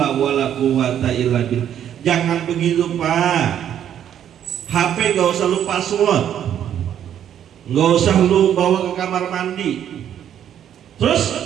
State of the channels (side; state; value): left; quieter; 10.0 dB